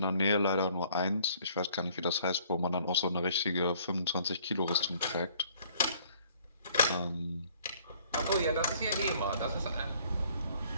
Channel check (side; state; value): both; inverted; correlation -0.59